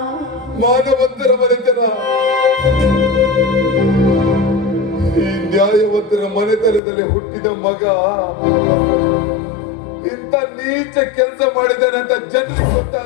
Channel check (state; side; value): drops out; right; at 6.8 s